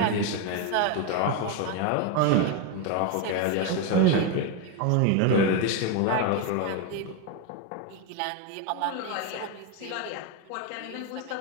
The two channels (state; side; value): different; both; correlation 0.02